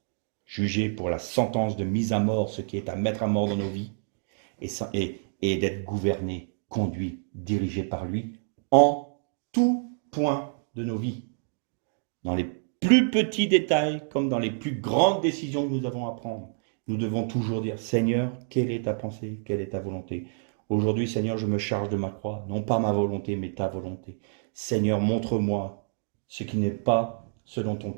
Juger pour la sentence de mise à mort, ce qui est à mettre à mort dans nos vies, et d'être gouverné, conduit, dirigé par lui, en tout point de nos vies. Dans les plus petits détails, comme dans les plus grandes décisions que nous avons à prendre, nous devons toujours dire, Seigneur, quelle est ta pensée, quelle est ta volonté? Aujourd'hui, Seigneur, je me charge de ma croix, non pas ma volonté, mais ta volonté. Seigneur, montre-moi ce qui n'est pas selon ton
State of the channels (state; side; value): silent; left; digital silence